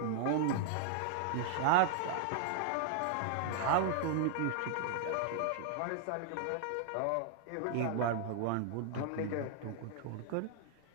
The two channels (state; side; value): different; both; correlation -0.01